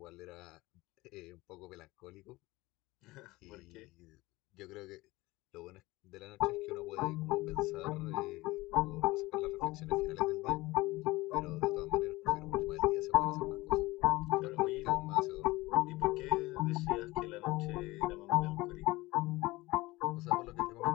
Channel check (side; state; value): right; quieter; 20.2 dB